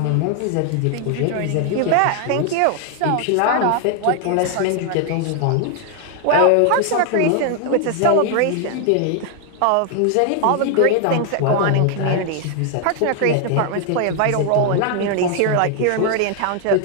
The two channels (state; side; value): different; both; correlation 0.00